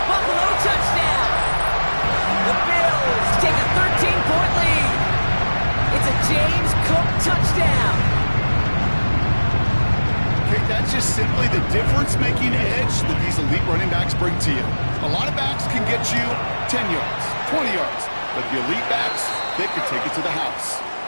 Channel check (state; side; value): inverted; both; correlation -1.00